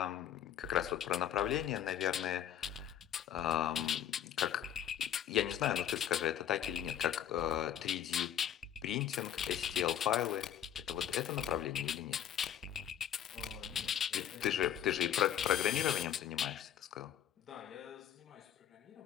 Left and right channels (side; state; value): right; quieter; 10.1 dB